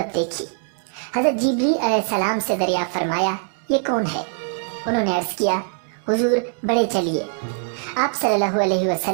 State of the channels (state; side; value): silent; left; 64 dB below the other